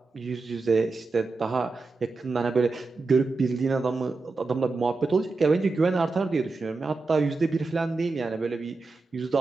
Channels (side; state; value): left; quieter; 3.8 dB